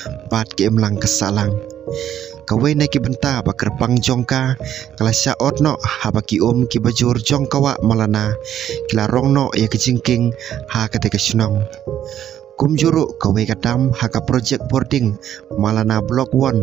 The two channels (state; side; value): quieter; left; 10.7 dB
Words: bat ke imlang kesalang kawai na ki benta bakar pang jongka kala sya otno habaki ki bajur jongkawa malana kila rongno ya kejingking haka te senong kumjuru kawai kadam haka project boarding malana blok 1